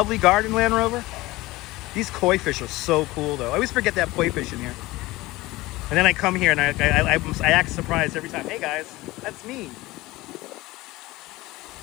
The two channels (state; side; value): quieter; right; 19.7 dB